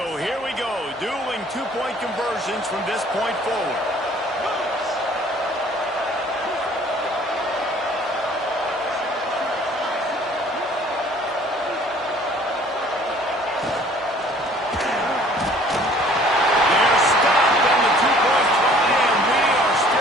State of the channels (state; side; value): normal; both; correlation 0.54